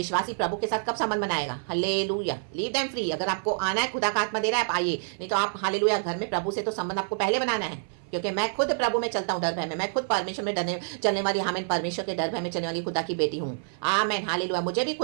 प्रभु के साथ कब संबंध बनाएगा? हालेलुया। Leave them free. अगर आपको आना है, खुदा का आत्मा दे रहा है, आप आइए, नहीं तो आप हालेलुया घर में प्रभु से तो संबंध आपको पहले बनाना है। क्योंकि मैं खुद प्रभु में चलता हूँ डर भय में, मैं खुद परमेश्वर में डरने चलने वाली, आमीन, परमेश्वर के डर भय में चलने वाली खुदा की बेटी हूँ। आमीन, हालेलुया। मुझे भी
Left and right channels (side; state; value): left; silent; 56 dB below the other